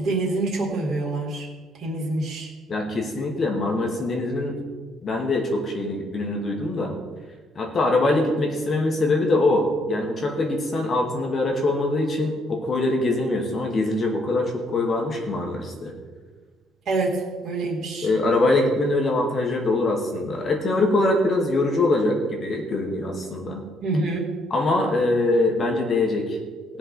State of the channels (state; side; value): normal; both; correlation 0.70